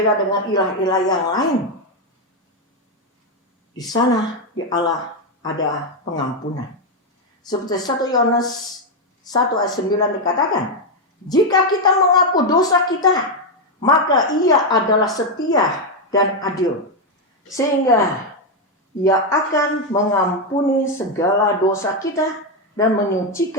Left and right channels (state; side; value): normal; both; correlation 0.04